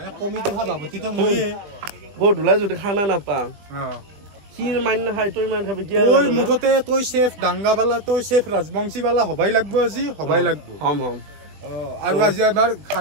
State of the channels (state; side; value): late; left; 20 ms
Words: কমিটি সভাপতি তো মই বহুত ধুলা যদি খানা নাপাম কি মান খাই তই মান খাবি কি ওই মুঠতে তই শেফ ডাঙ্গাবালা তই শেফ রাজবংশীবালা হবাই লাগবো আজি হবাই লাগবো হম আৰু আজি আমাৰ